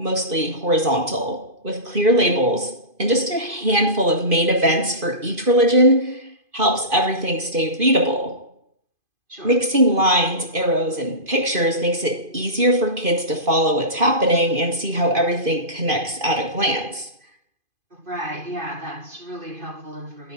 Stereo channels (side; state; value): left; late; 2.5 ms